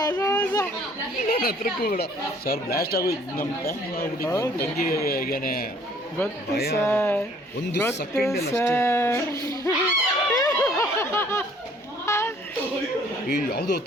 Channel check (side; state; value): both; normal; correlation 0.58